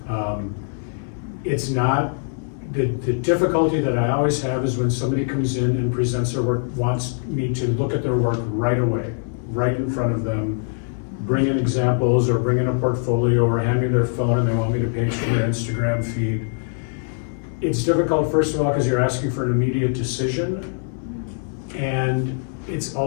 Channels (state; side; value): silent; right; digital silence